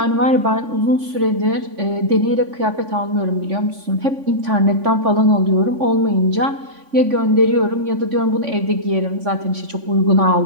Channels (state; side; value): late; left; 3.5 ms